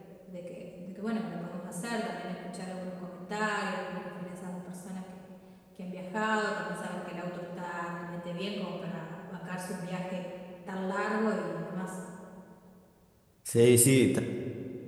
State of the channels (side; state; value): both; identical; correlation 1.00